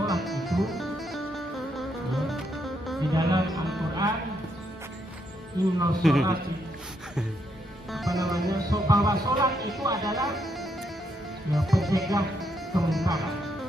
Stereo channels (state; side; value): normal; both; correlation 0.77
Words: itu di dalam Al-Quran, inna sholati, bahwa sholat itu adalah pencegah kemungkaran.